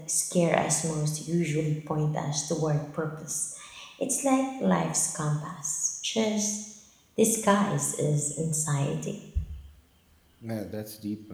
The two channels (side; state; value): both; identical; correlation 1.00